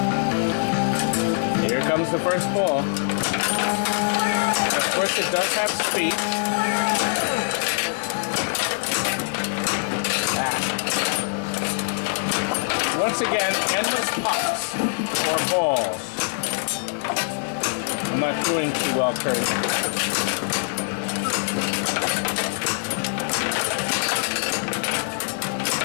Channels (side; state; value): right; silent; 57 dB below the other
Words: Here comes the first ball. Of course, it does have speed. Once again, endless pucks or balls. I'm not doing too well, Curt.